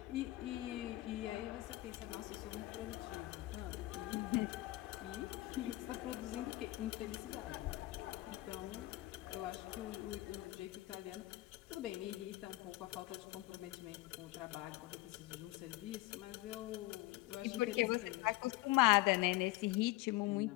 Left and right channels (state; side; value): quieter; right; 18.6 dB